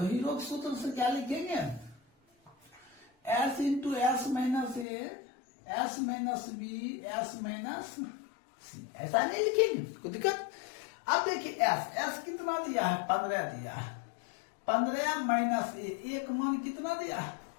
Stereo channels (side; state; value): right; drops out; at 4.9 s